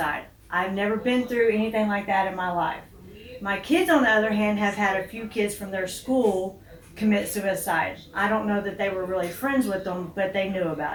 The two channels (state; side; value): identical; both; correlation 1.00